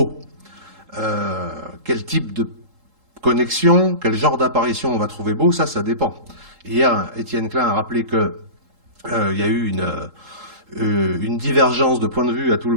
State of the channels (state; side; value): late; left; 3.8 ms